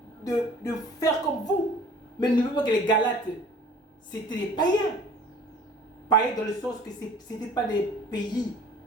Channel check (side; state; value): both; normal; correlation 0.49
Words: faire comme vous. Mais n'oubliez pas que les Galates, c'était des païens. Païens dans le sens que ce n'étaient pas des pays,